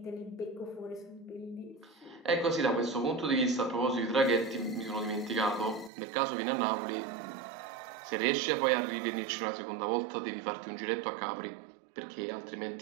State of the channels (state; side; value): drops out; left; at 5.9 s